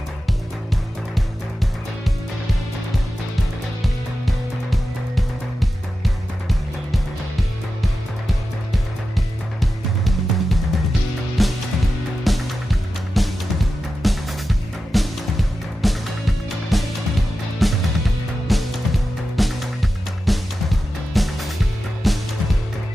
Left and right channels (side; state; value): both; normal; correlation 0.92